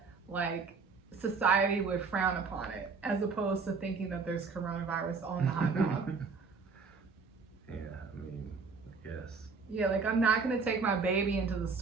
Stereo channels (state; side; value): quieter; left; 4.8 dB